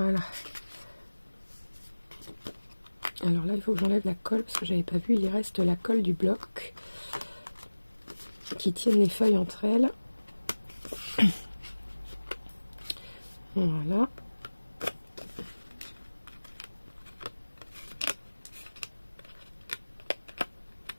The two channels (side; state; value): both; inverted; correlation -1.00